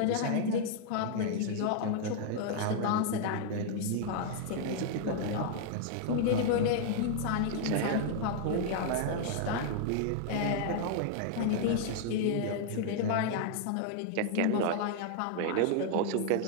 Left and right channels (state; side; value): different; both; correlation -0.01